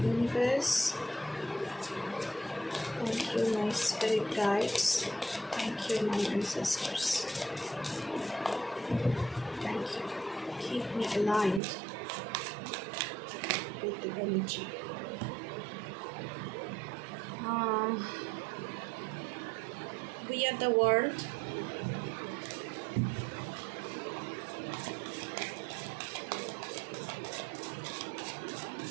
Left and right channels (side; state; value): left; drops out; at 11.6 s